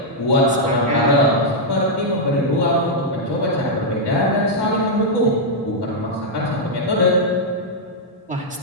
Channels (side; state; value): both; normal; correlation -0.05